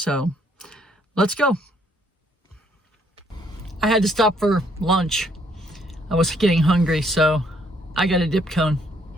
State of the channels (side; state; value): both; normal; correlation 0.68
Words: let's go. I had to stop for lunch. I was getting hungry, so I got a dip cone.